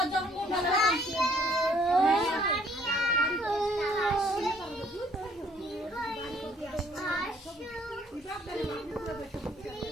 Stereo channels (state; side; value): normal; both; correlation 0.63